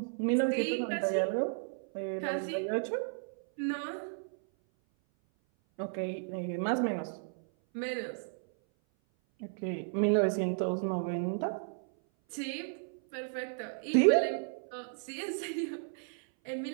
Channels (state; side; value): silent; left; 55 dB below the other